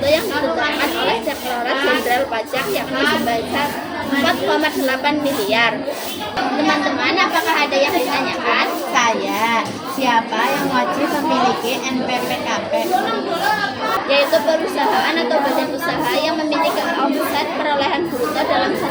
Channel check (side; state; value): both; identical; correlation 1.00